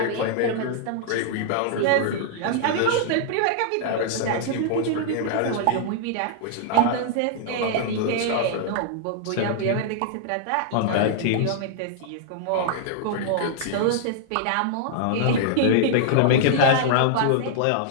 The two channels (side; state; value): both; different; correlation -0.01